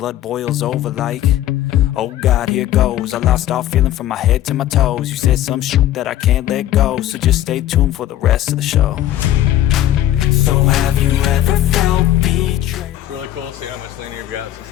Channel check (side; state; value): right; quieter; 12.8 dB